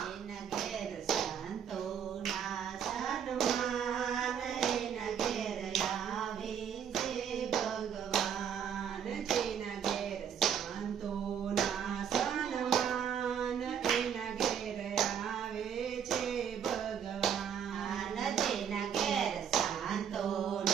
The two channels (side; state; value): left; quieter; 8.3 dB